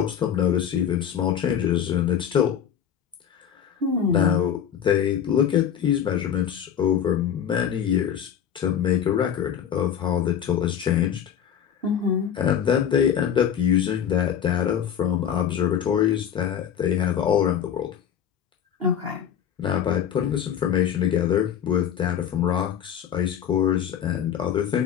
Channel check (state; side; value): quieter; right; 9.0 dB